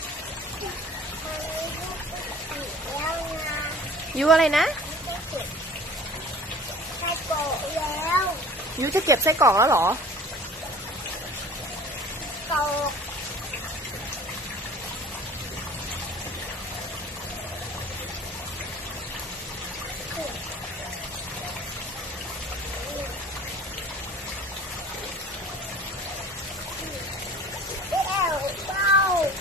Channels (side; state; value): both; normal; correlation 0.46